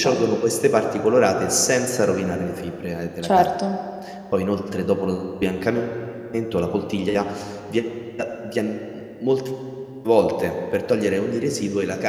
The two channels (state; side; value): identical; both; correlation 1.00